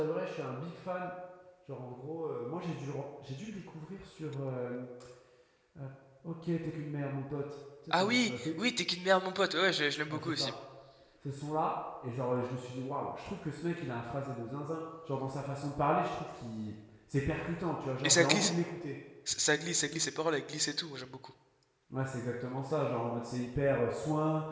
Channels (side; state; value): both; identical; correlation 1.00